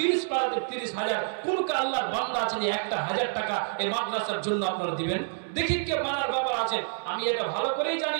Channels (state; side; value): silent; left; digital silence